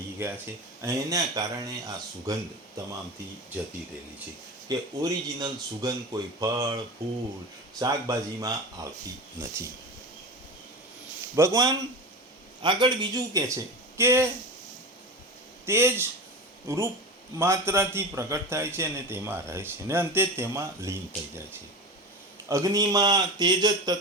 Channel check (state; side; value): normal; both; correlation 0.27